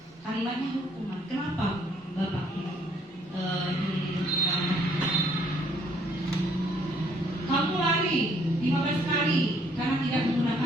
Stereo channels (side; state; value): both; normal; correlation 0.65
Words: Kalimatnya hukuman. Kenapa? Bapak kamu lari 15 kali karena tidak